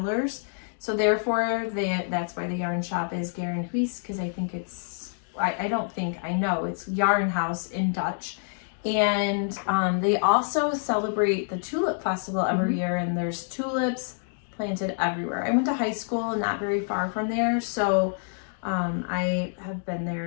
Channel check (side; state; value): right; silent; 60 dB below the other